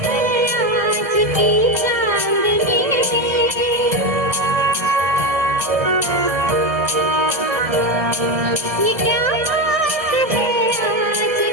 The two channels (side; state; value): left; late; 1.6 ms